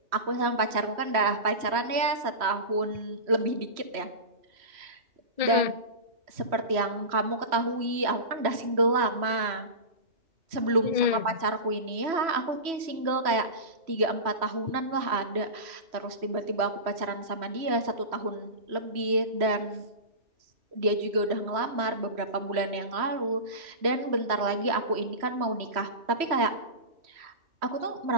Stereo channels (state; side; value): late; left; 3.1 ms